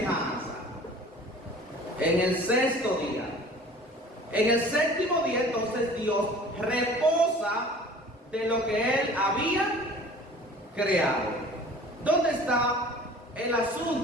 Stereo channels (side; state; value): both; normal; correlation 0.46